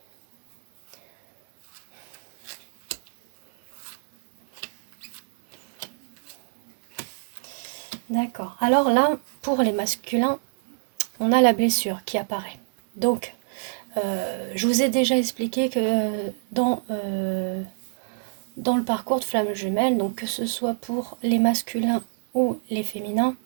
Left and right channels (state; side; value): silent; left; 61 dB below the other